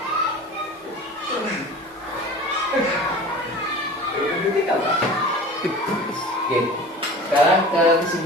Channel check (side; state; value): both; normal; correlation 0.38